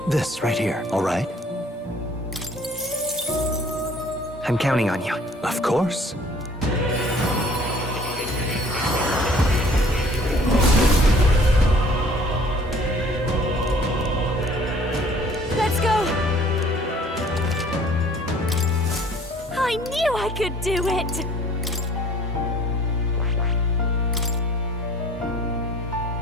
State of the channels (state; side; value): normal; both; correlation 0.54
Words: This right here, all right? I'm counting on you. Of course. Let's go! I knew I could do it!